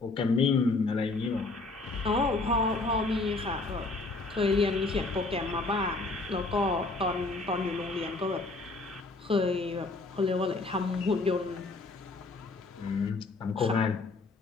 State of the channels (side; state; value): right; quieter; 3.4 dB